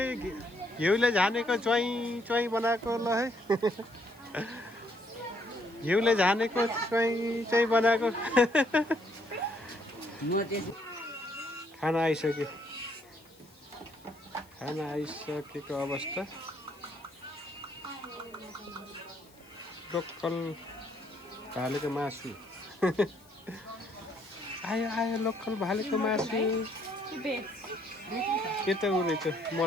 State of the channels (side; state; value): left; noise; hiss, 27 dB below the sound